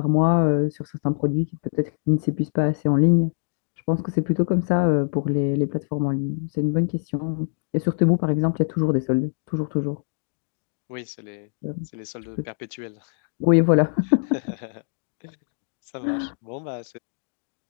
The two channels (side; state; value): right; silent; digital silence